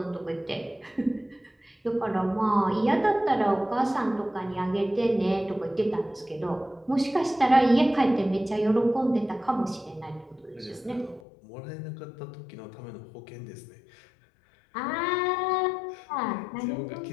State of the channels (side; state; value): right; drops out; at 11.2 s